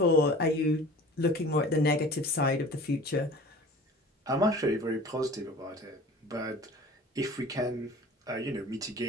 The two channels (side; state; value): both; normal; correlation 0.42